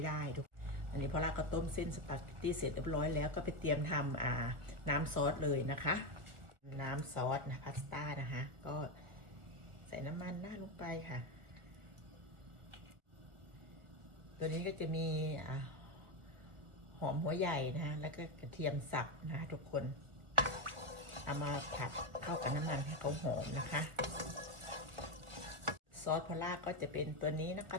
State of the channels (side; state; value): left; late; 1.4 ms